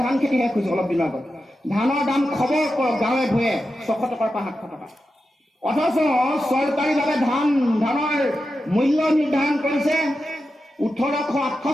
ধান খেতি শেষ হৈছে অলপ দিনৰ আগত। ধানৰ দাম খবৰ কৰক গাঁৱে ভূঞে 600 টকাৰ পৰা 700 টকা। অথচ চৰকাৰীভাৱে ধানৰ মূল্য নিৰ্ধাৰণ কৰিছে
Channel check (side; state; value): both; normal; correlation 0.90